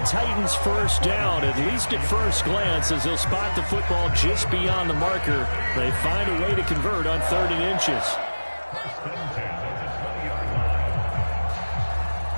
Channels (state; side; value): inverted; both; correlation -1.00